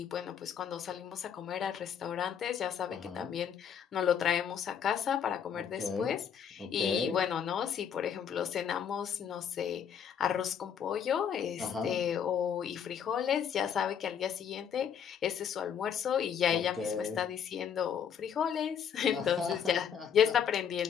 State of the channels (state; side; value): quieter; right; 8.0 dB